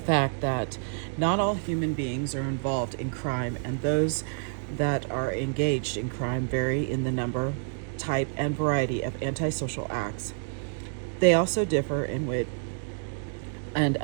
that not all human beings are involved in crime, and those that are engaged in crime vary in the number, type, and variety of antisocial acts. They also differ in what and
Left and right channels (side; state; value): left; silent; 59 dB below the other